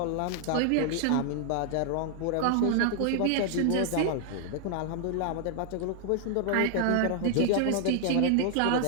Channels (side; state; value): both; different; correlation -0.01